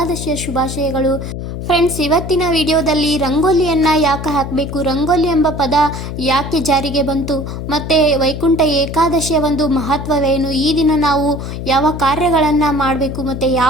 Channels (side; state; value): left; noise; hum, 7 dB below the sound